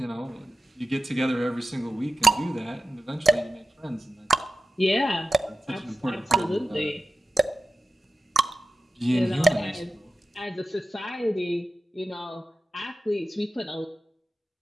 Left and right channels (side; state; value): both; normal; correlation 0.91